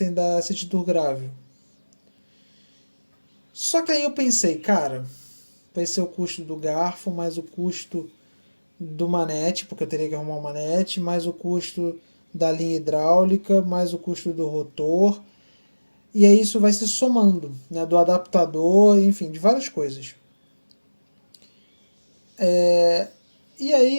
da City Tour Grável. Só que aí eu pensei, cara, vai ser o custo do garfo, mais o custo do manete, porque eu teria que arrumar um manete, mais o custo da linha hidráulica, mais o custo do rotor. E aí isso vai se somando, né, do adaptador, enfim, de várias coisas. E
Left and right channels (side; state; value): both; inverted; correlation -1.00